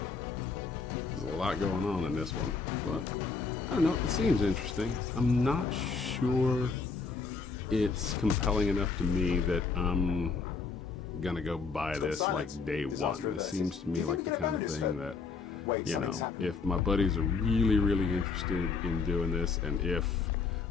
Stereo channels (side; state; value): right; quieter; 4.8 dB